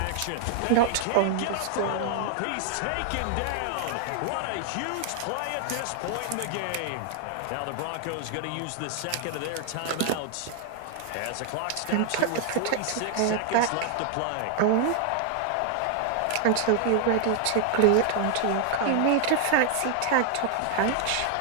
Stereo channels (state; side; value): different; both; correlation 0.00